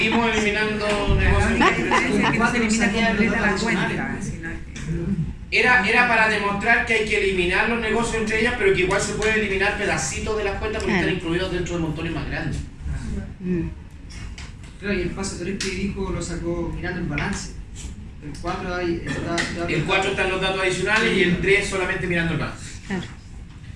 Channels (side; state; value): both; identical; correlation 1.00